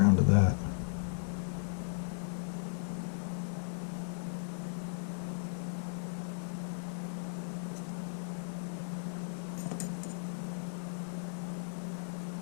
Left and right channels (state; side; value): silent; right; 54 dB below the other